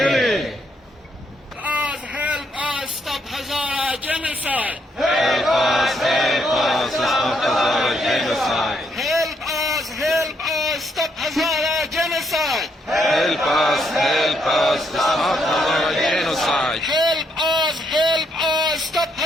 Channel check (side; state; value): both; normal; correlation 0.75